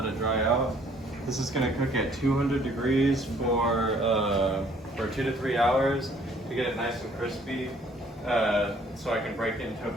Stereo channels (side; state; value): both; normal; correlation 0.60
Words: it dry out. This is gonna cook at 200 degrees for 2 to 3 hours to get it nice and crispy, so I can break it into a